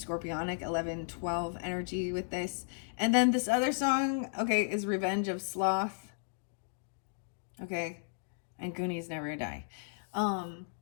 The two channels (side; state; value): right; silent; digital silence